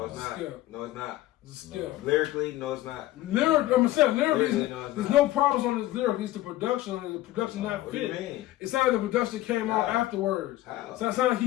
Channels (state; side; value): quieter; right; 15.7 dB